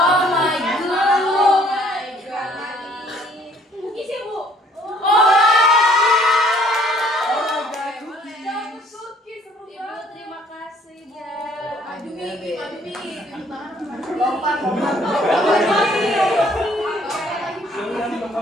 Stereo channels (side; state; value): both; normal; correlation 0.60